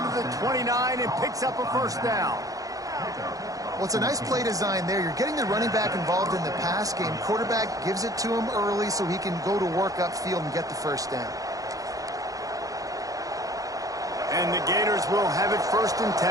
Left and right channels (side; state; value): left; late; 0.17 ms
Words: to the 29 and picks up a 1st down. Well, it's a nice play design there. You're getting the running back involved in the pass game. Quarterback gives it to him early so he can go to work upfield and get the 1st down. And the Gators will have it 1st and